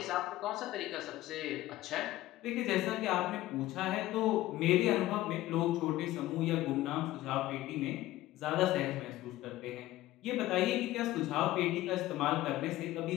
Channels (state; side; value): quieter; right; 16.0 dB